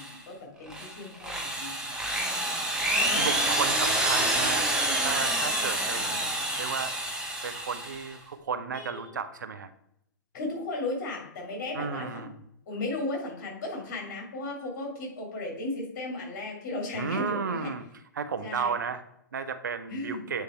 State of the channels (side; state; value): both; normal; correlation 0.09